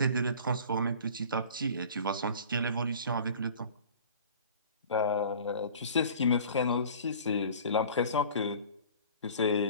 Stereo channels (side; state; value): both; inverted; correlation -0.44